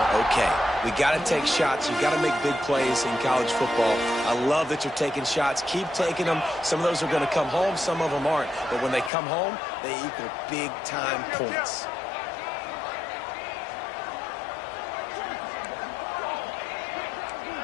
okay. We got to take shots. You got to make big plays in college football. I love that you're taking shots. Keep taking them. Some of those are going to come home. Some of them aren't. But when they come home, they equal big-time points.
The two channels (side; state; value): right; drops out; at 9.1 s